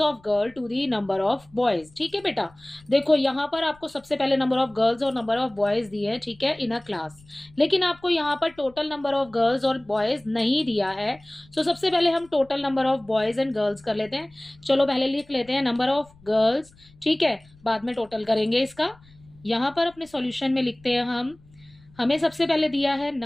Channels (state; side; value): noise; left; rumble, 27 dB below the sound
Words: of girl to the number of boys. ठीक है बेटा, देखो यहाँ पर आपको सबसे पहले नंबर ऑफ गर्ल्स और नंबर ऑफ बॉयज दिए हैं, ठीक है, इन अ क्लास। लेकिन आपको यहाँ पर टोटल नंबर ऑफ गर्ल्स और बॉयज नहीं दिया है। सो सबसे पहले हम total number of boys and girls कर लेते हैं। चलो पहले लिख लेते हैं नंबर ऑफ गर्ल्स, ठीक है, बाद में टोटल करेंगे इसका। यहाँ पर अपने सॉल्यूशन में लिखते हैं हमें सबसे पहले दिया है